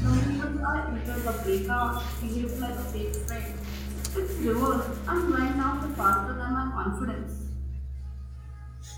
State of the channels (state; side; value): identical; both; correlation 1.00